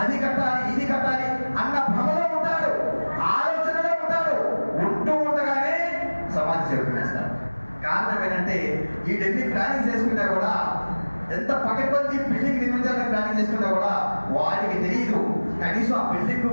అది కట్టాలి, ఇది కట్టాలి అన్న భ్రమలో ఉంటాడు, ఆలోచనలో ఉంటాడు. ఉంటూ ఉండగానే సమాధి చెరుకునేస్తాడు. కారణం ఏంటంటే వీటన్ని ప్లానింగ్ చేసుకున్నా కూడా, ఎంత పకడ్బందీ బిల్డింగ్ నిర్మించాలని ప్లానింగ్ చేసుకున్నా కూడా వాడికి తెలియదు కనీసం ఆ బిల్డింగ్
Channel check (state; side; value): inverted; both; correlation -1.00